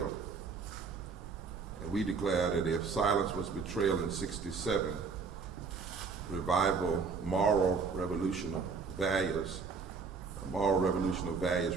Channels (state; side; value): quieter; left; 5.0 dB